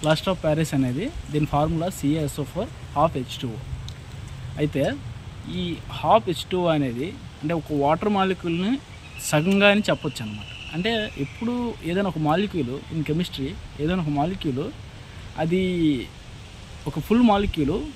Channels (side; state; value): both; identical; correlation 1.00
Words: ప్లాస్టర్ ఆఫ్ ప్యారిస్ అనేది దీని ఫార్ములా CaSO4 హాఫ్ H2O. అయితే ఈ హాఫ్ H2O అనేది అంటే ఒక వాటర్ మాలిక్యూల్ని సగంగా అని చెప్పొచ్చు అనమాట. అంటే ఎప్పుడు ఏదైనా ఒక మాలిక్యూల్ ఇన్ కెమిస్ట్రీ ఏదైనా ఒక మాలిక్యూల్ అది ఒక ఫుల్ మాలిక్యూల్